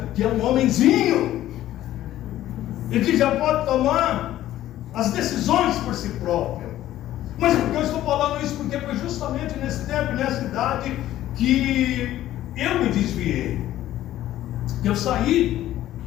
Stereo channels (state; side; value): quieter; right; 13.6 dB